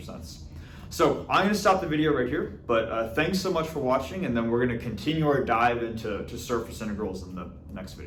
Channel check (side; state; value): both; identical; correlation 1.00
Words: sense. So I'm going to stop the video right here, but thanks so much for watching, and then we're going to continue our dive into surface integrals in the next